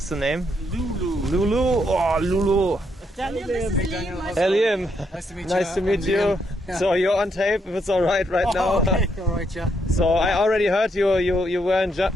the name? Lulu. Lulu. Oh, Lulu. Daniel, this is Liam. Hey, Liam. Nice to meet you. Nice to meet you. Yeah. So you're on tape, if it's all right now. Okay, all right, yeah. So I already heard you were in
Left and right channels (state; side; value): normal; both; correlation 0.76